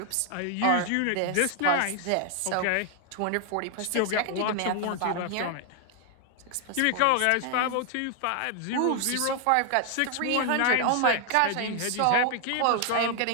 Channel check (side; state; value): both; different; correlation 0.00